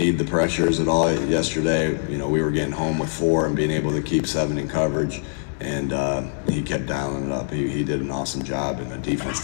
the pressures at all yesterday. We were getting home with 4 and being able to keep 7 in coverage, and he kept dialing it up. He did an awesome job, and the defense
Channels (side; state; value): right; silent; digital silence